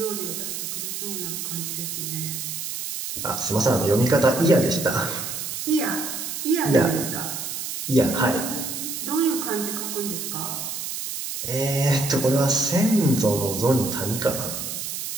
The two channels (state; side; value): noise; right; hiss, 5 dB below the sound